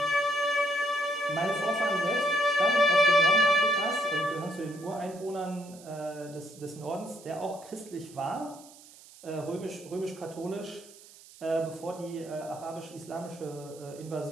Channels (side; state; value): right; noise; hiss, 21 dB below the sound